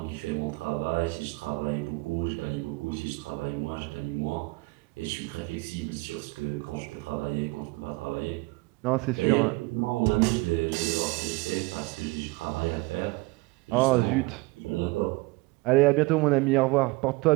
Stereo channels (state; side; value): quieter; left; 24.4 dB